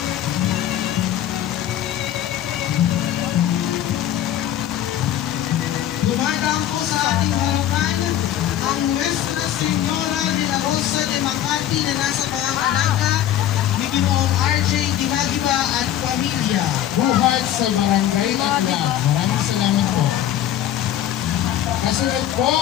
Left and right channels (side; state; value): right; quieter; 11.5 dB